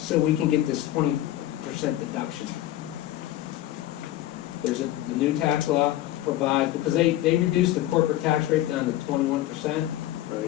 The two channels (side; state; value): right; quieter; 14.5 dB